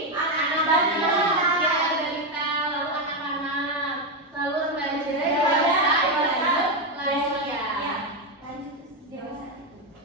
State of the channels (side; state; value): both; normal; correlation 0.08